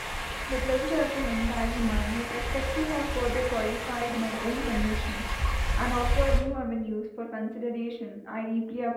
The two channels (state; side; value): identical; both; correlation 1.00